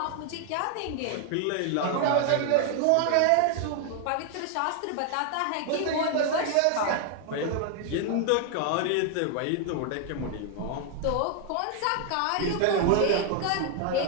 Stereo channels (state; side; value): different; both; correlation 0.00